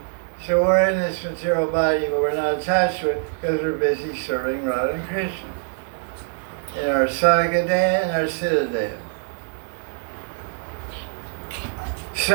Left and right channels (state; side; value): silent; left; 63 dB below the other